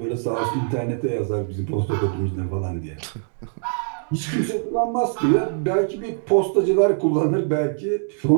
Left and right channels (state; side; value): silent; left; digital silence